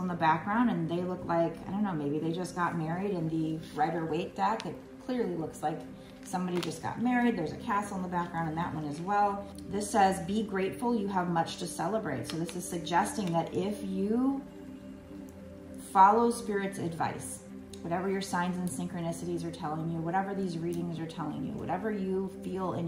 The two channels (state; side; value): identical; both; correlation 1.00